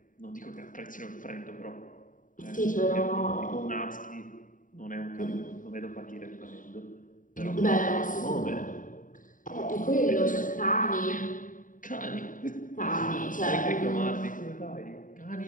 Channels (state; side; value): late; right; 0.39 ms